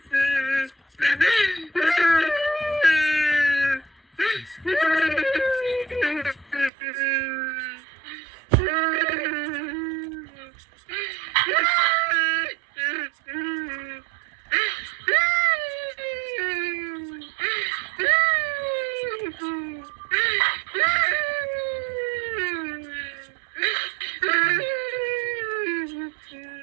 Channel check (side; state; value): left; drops out; at 6.7 s